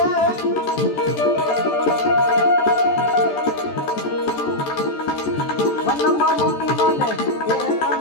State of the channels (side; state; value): right; late; 14 ms